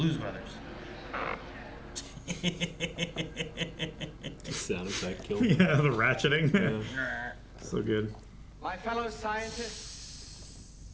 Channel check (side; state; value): both; identical; correlation 1.00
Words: Brothers. Sound effect killed. Yeah, the ratcheting. Yeah. So good. My fellow scientists,